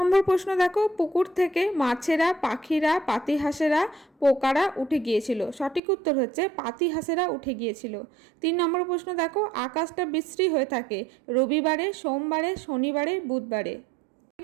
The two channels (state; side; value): drops out; left; at 5.8 s